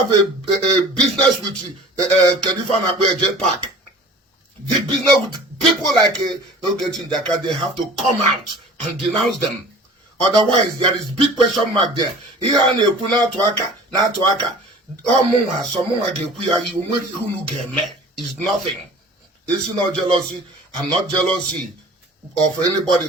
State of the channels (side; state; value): both; normal; correlation 0.43